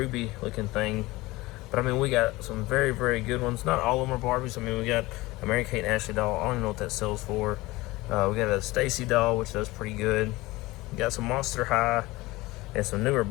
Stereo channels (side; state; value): right; quieter; 20.3 dB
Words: looking thing. But I mean, we got some very, very good ones. Not all of them are Barbies. I mean, we got a Mary Kate and Ashley doll. I don't even know what that sells for. We got a Stacy doll, which does pretty good. We got some Monster High and some newer